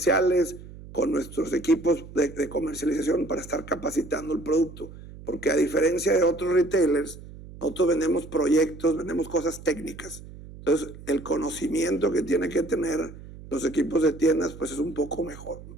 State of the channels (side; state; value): right; noise; hum, 16 dB below the sound